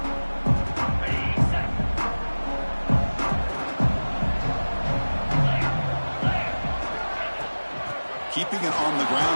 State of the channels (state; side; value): inverted; both; correlation -1.00